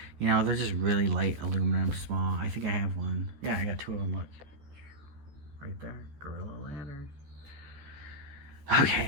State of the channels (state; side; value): late; left; 14 ms